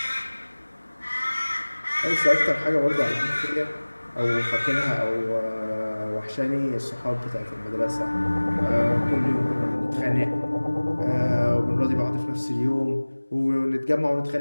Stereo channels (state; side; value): inverted; both; correlation -1.00